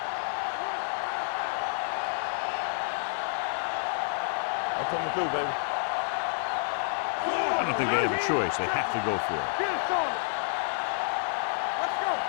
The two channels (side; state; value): right; silent; digital silence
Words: I'm coming through, baby. I don't think they have a choice. They have to go for it. Get it started. Watch your eyes. Let's go.